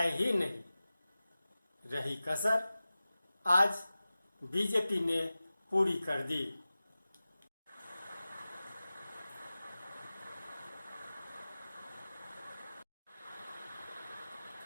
ही नहीं। रही कसर आज बीजेपी ने पूरी कर दी।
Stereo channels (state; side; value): inverted; both; correlation -0.96